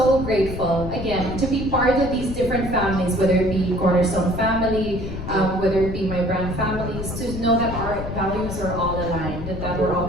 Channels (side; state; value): left; noise; rumble, 7 dB below the sound